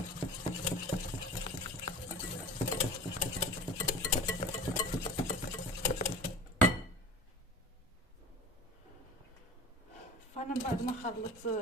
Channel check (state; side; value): normal; both; correlation 0.36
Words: فانا من بعد ما خلطت